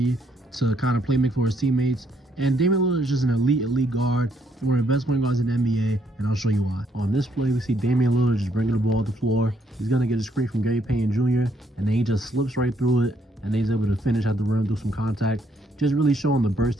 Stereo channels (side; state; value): both; normal; correlation 0.71